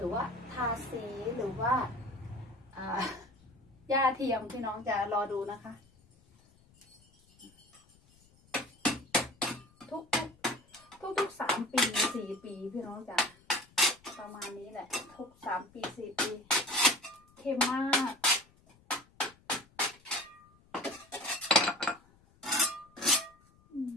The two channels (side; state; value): left; noise; rumble, 30 dB below the sound